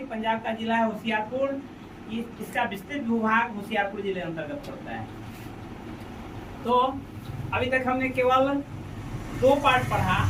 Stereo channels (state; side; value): identical; both; correlation 1.00